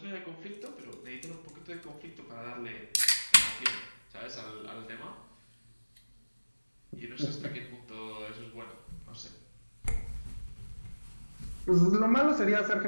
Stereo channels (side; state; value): both; inverted; correlation -1.00